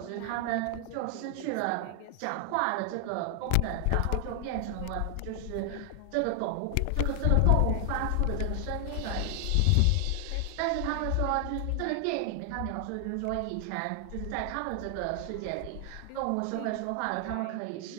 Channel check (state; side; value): different; both; correlation 0.00